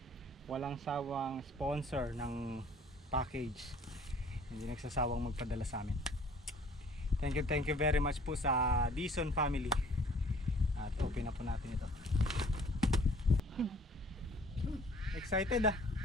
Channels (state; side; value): normal; both; correlation 0.55